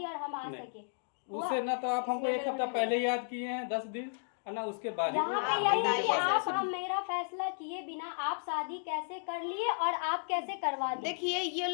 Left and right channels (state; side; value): silent; right; digital silence